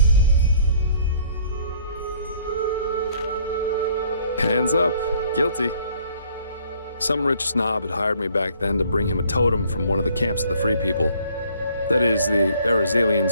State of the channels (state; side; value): inverted; both; correlation -0.59